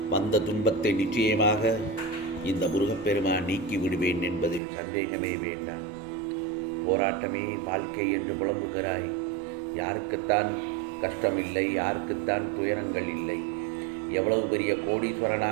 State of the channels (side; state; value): left; drops out; at 4.6 s